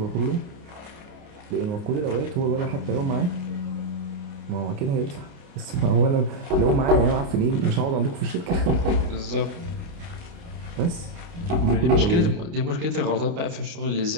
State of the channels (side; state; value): left; late; 29 ms